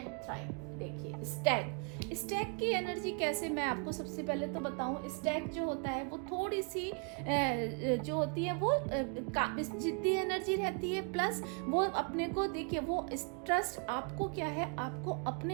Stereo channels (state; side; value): quieter; left; 37.8 dB